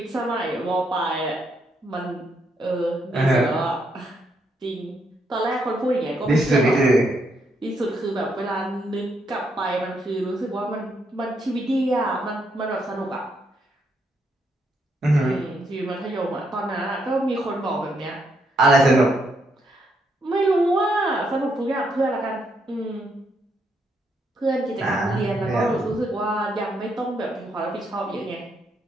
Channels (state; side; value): normal; both; correlation 0.76